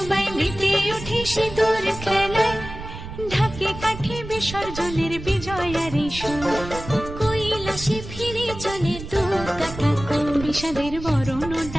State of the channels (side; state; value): right; noise; rumble, 11 dB below the sound